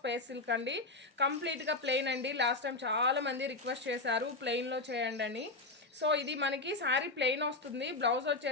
సిల్క్ అండి. కంప్లీట్గా ప్లెయిన్ అండి. లాస్ట్ టైం చాలా మంది రిక్వెస్ట్ చేశారు ప్లెయిన్లో చేయండి అని. సో ఇది మనకి శారీ ప్లెయిన్ వస్తుంది, బ్లౌజ్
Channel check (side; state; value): right; quieter; 3.2 dB